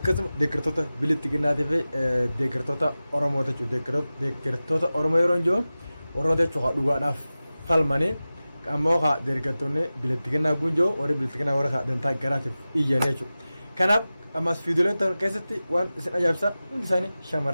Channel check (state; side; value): inverted; both; correlation -0.96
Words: deeggartoota bilittiginaatii fi deeggartoota Oromoota jechuudha. Deeggartoota Oromoo yeroo hin jiru warroota jechuudha dhugaadhaaf falmanii ammoo haa deeggartoonni bilittiginaa gunjoo warri bilittiginaa warra dantaa garaatiif iyyan jechuudha. Kanaaf ammas viidiyooleen ta'an keessatti waan isin ajaa'ibsa hundi isaanii